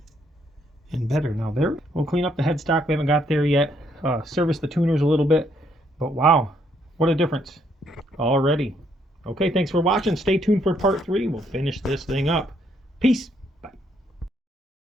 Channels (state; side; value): normal; both; correlation 0.71